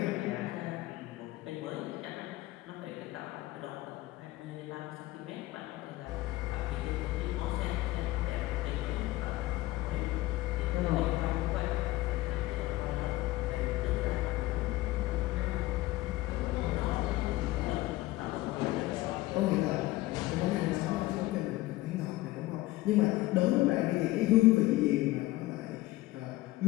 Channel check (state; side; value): quieter; right; 18.2 dB